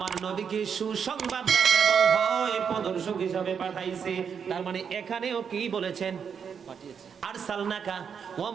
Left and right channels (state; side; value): quieter; left; 7.0 dB